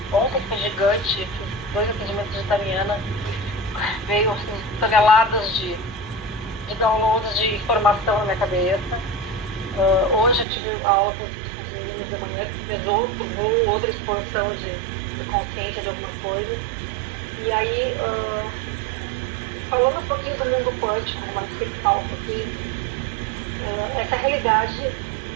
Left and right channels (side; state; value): left; drops out; at 10.5 s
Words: Ontem foi gigante, fiz 2 atendimentos de Tariana e veio assim, toneladas de downloads de informação na minha cabeça. Hoje eu tive aula com os meninos da manhã que fez outra expansão de consciência de alguma coisa. E aí, falando um pouquinho do mundo quântico, como a gente sempre fala um pouquinho, essa realidade,